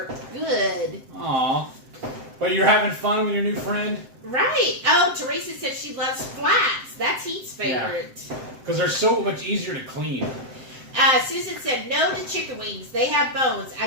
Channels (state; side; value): late; left; 7.7 ms